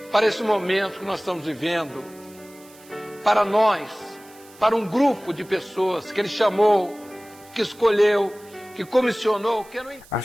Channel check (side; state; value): right; noise; hiss, 24 dB below the sound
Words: para esse momento que nós estamos vivendo, para nós, para um grupo de pessoas que Ele chamou, que escolheu, que comissionou, que não...